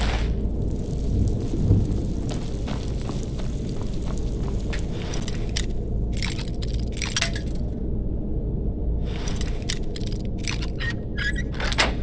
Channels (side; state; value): both; identical; correlation 1.00